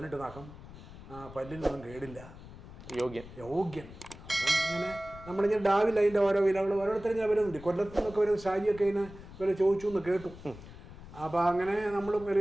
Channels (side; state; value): left; noise; rumble, 16 dB below the sound